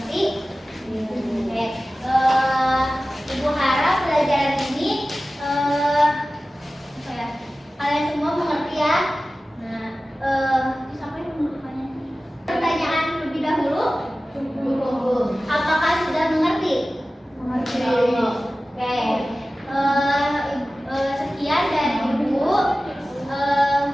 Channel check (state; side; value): normal; both; correlation 0.96